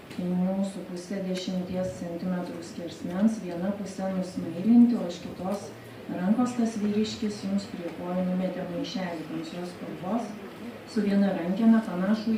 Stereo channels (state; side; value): identical; both; correlation 1.00